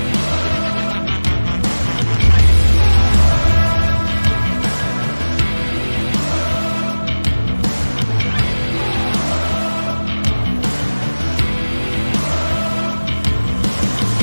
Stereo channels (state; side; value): inverted; both; correlation -1.00